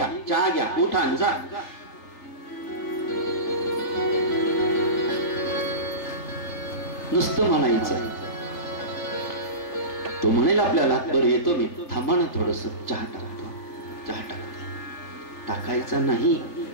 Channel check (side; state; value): right; late; 3.3 ms